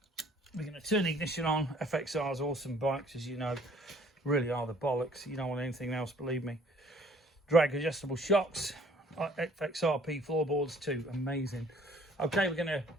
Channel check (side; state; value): both; normal; correlation 0.57